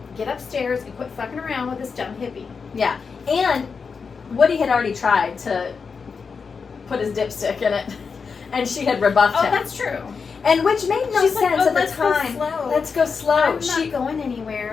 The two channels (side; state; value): right; quieter; 5.4 dB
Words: get upstairs and quit fucking around with this dumb hippie. Yeah. And Woody had already tried to put his dipstick in it. And she had rebuffed Oh, him. that's true. And which made no She's sense like, oh, at the let's go time. slow. Let's go slow. I'm not going